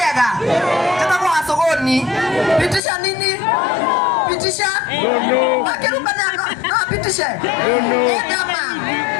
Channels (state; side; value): drops out; right; at 2.8 s